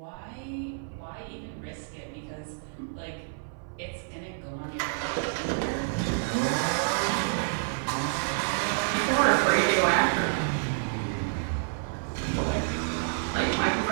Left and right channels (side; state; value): left; silent; 57 dB below the other